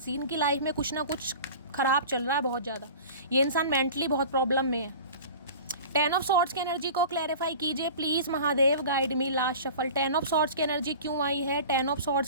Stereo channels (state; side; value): inverted; both; correlation -0.39